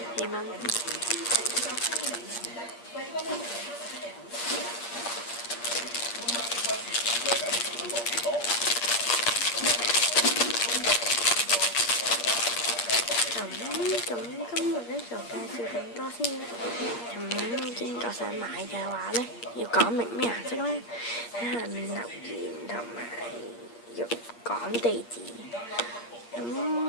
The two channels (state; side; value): late; right; 8.5 ms